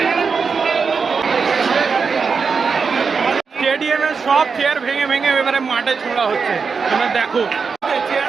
স্টেডিয়ামের সব চেয়ার ভেঙে ভেঙে এবারে মাঠে ছোড়া হচ্ছে, তোমরা দেখো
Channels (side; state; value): left; quieter; 5.3 dB